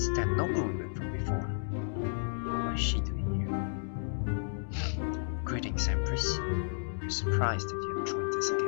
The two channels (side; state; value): right; silent; digital silence